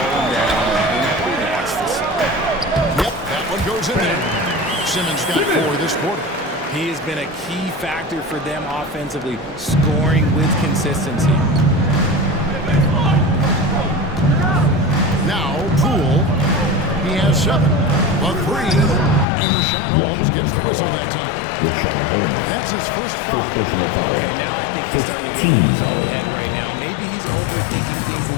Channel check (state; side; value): drops out; right; at 19.2 s